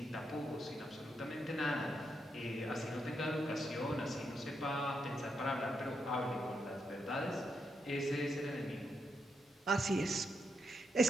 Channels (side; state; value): both; normal; correlation 0.81